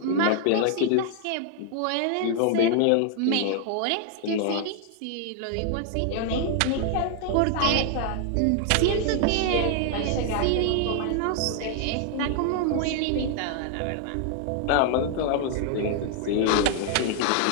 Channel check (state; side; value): different; both; correlation 0.00